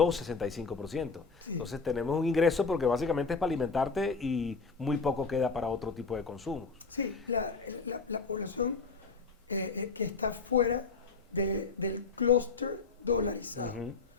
65%. Sí. Entonces tenemos un ingreso porque básicamente es para alimentarte y muy poco queda para otro tipo de consumos. Sí, la población que está fuera del clúster dolarizado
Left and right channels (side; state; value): right; quieter; 4.5 dB